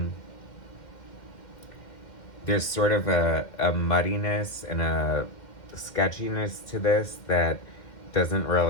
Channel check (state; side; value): late; right; 2.1 ms